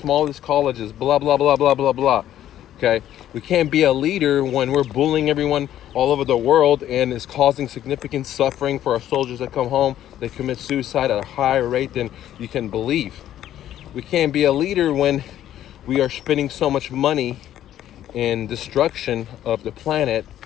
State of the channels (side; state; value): right; quieter; 11.8 dB